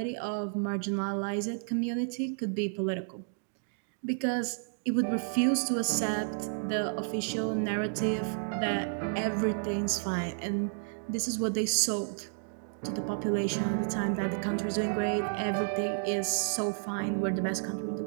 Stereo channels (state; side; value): silent; left; digital silence